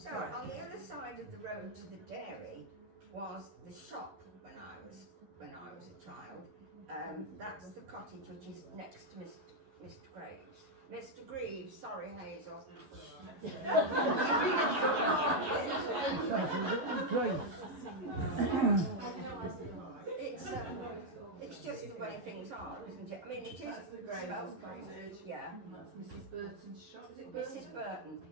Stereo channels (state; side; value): late; left; 11 ms